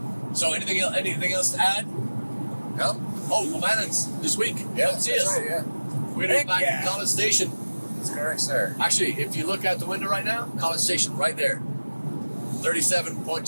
So anything else to add? No. Oh, O'Mannon's this week. Yeah, see us. right, yeah. We're going to be back at College Station. That's correct, sir. Actually, if you look out the window right now, College Station right there.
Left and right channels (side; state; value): both; inverted; correlation -1.00